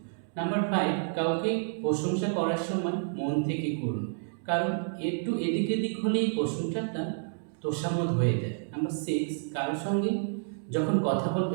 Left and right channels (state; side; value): silent; left; digital silence